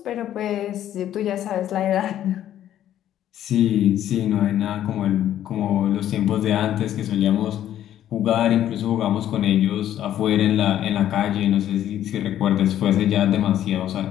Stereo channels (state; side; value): quieter; right; 11.6 dB